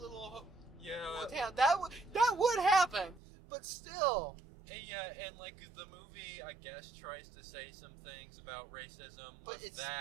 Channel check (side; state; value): left; drops out; at 3.2 s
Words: town, that would happen. But still. Yeah, and like the movie, I guess, tries to say some things about racism with